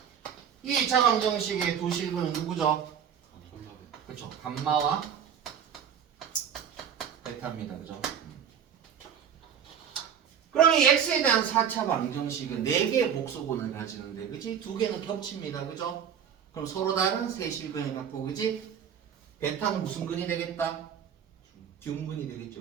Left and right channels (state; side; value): quieter; left; 8.2 dB